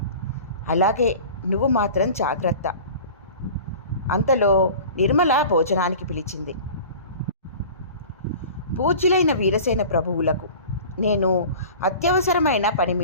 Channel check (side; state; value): both; inverted; correlation -0.40